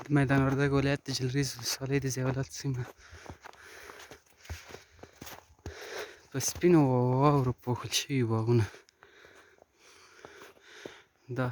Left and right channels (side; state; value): both; identical; correlation 1.00